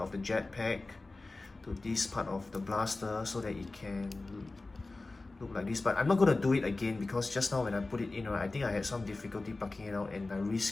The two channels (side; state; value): right; quieter; 3.3 dB